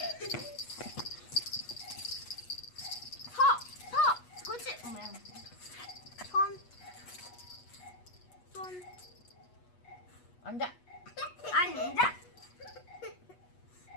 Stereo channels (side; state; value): right; late; 8.2 ms